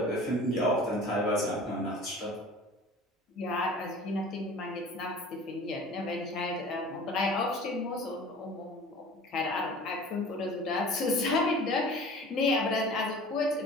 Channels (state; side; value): normal; both; correlation 0.43